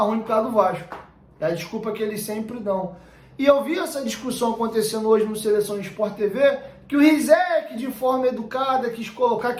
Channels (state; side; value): identical; both; correlation 1.00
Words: por causa do Vasco. É a desculpa que eles sempre dão. E eu vi essa discussão acontecendo hoje no Seleção Sport TV, que o Rizek, de forma educada, quis colocar